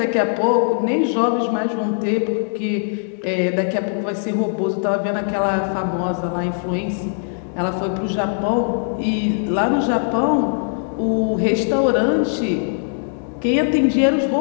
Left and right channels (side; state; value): right; silent; digital silence